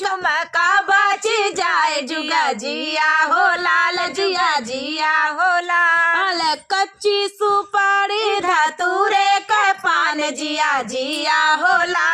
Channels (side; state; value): both; identical; correlation 1.00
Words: कच्ची सुपारी धतूरे का पान जिया जिया हो